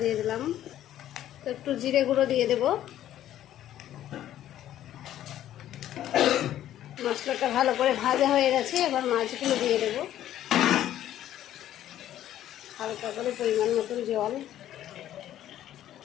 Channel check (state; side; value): quieter; right; 12.2 dB